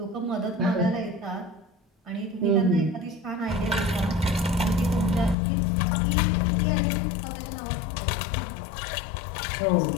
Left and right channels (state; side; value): drops out; right; at 5.4 s